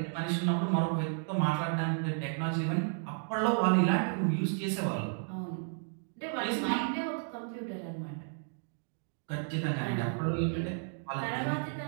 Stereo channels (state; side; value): silent; left; 56 dB below the other